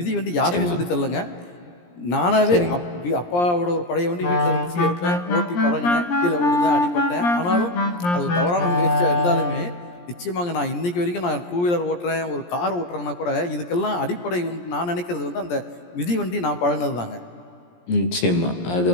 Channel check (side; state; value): right; late; 17 ms